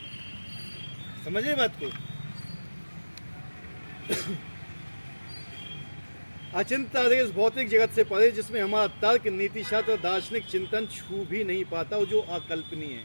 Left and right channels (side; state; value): both; inverted; correlation -1.00